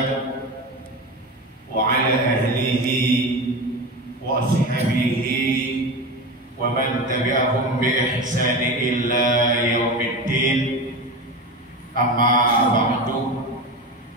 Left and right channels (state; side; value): normal; both; correlation 0.25